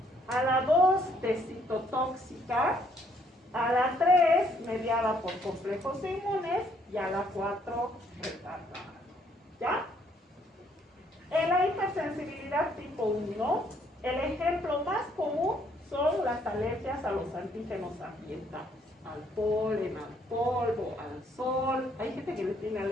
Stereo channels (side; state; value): both; normal; correlation 0.67